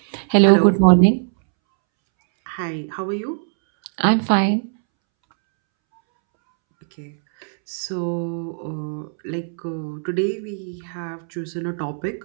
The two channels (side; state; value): left; silent; 65 dB below the other